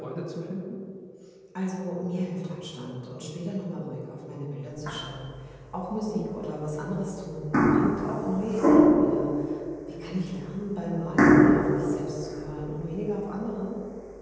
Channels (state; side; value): identical; both; correlation 1.00